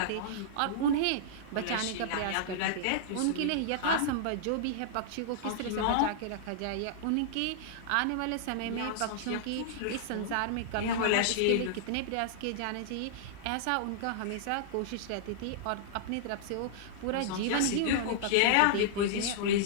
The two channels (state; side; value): different; both; correlation -0.01